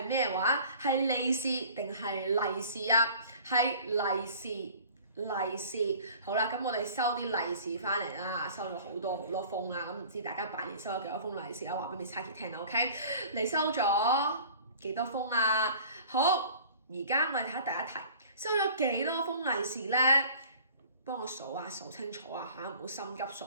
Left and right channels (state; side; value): inverted; both; correlation -0.47